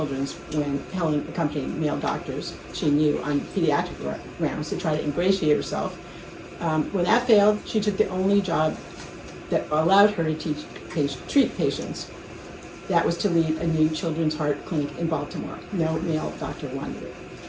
when Helen accompanied male doctors she knew on pediatric rounds to try to ingratiate herself. When that failed, she took the only job that allowed her to treat patients. That was to lead a new children's heart clinic in Baltimore. No male doctor wanted it.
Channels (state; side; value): identical; both; correlation 1.00